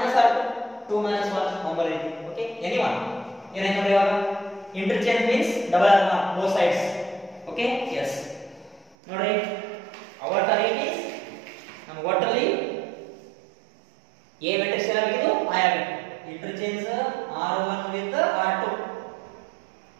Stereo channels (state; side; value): drops out; left; at 9.0 s